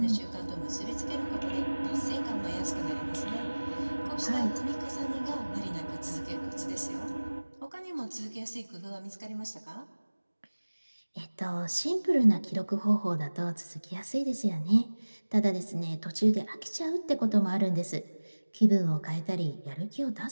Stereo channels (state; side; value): inverted; both; correlation -1.00